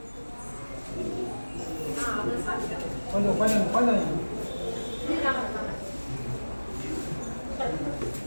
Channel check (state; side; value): inverted; both; correlation -1.00